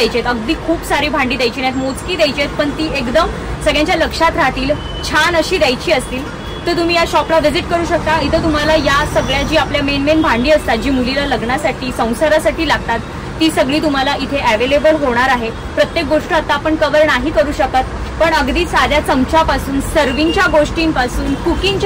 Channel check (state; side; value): identical; both; correlation 1.00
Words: आहेत, अगदी खूप सारी भांडी द्यायची नाहीत, मोजकी द्यायची आहेत, पण ती एकदम सगळ्यांच्या लक्षात राहतील, छान अशी द्यायची असतील, तर तुम्ही या शॉपला व्हिजिट करू शकता. इथं तुम्हाला या सगळ्या जी आपल्या मेन भांडी असतात, जी मुलीला लग्नासाठी संसारासाठी लागतात, ती सगळी तुम्हाला इथे अवेलेबल होणार आहे. प्रत्येक गोष्ट आता आपण कव्हर नाही करू शकत, पण अगदी साध्या चमच्यापासून, सर्विंगच्या गोष्टींपासून,